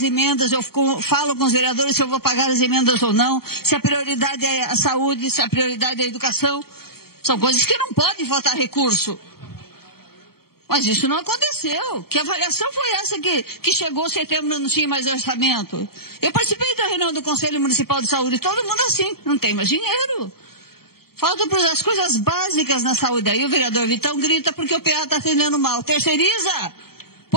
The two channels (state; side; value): late; right; 0.95 ms